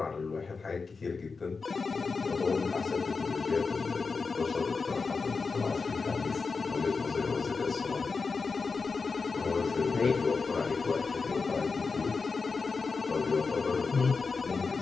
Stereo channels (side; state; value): right; quieter; 4.6 dB